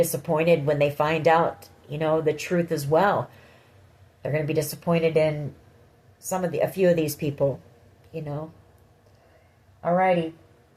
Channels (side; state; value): both; identical; correlation 1.00